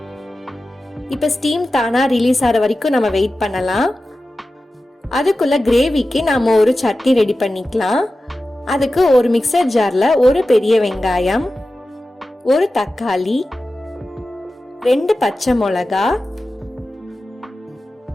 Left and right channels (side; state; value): both; normal; correlation 0.94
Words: இப்ப ஸ்டீம் தானா ரிலீஸ் ஆகிற வரைக்கும் நம்ம வெயிட் பண்ணலாம். அதுக்குள்ள கிரேவிக்கு நாம ஒரு சட்னி ரெடி பண்ணிக்கலாம். அதுக்கு ஒரு மிக்சர் ஜார்ல ஒரு பெரிய வெங்காயம், ஒரு தக்காளி, 2 பச்சை மிளகா,